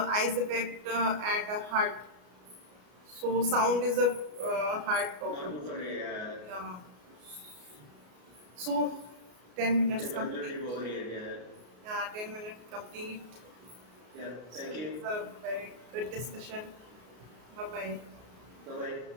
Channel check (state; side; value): late; left; 33 ms